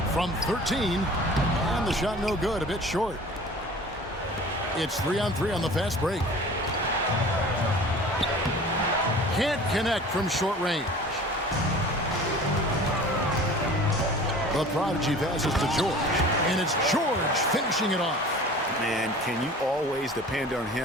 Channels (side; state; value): both; normal; correlation 0.43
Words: From 13. And the shot no good, a bit short. It's 3-on-3 on the fast break. Can't connect from short range. The prodigy passes to George. And it's George finishing it off. Man, can you always depend on